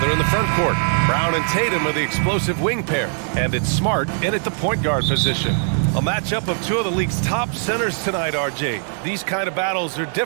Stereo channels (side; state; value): left; silent; 65 dB below the other